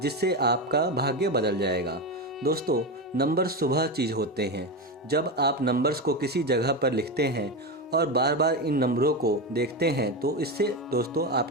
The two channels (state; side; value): normal; both; correlation 0.16